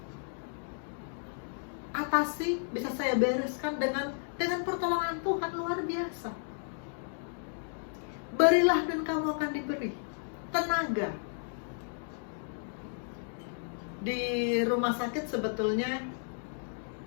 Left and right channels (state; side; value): silent; right; digital silence